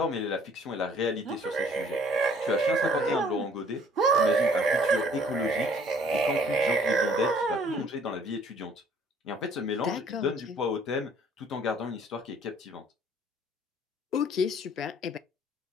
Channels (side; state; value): both; normal; correlation 0.58